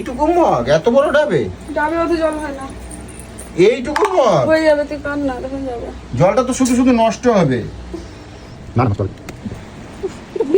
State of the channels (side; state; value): both; identical; correlation 1.00